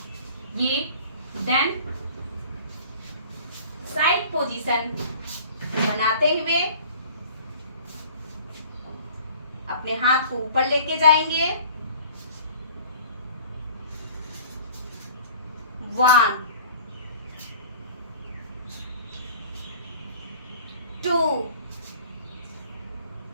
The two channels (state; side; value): inverted; both; correlation -0.47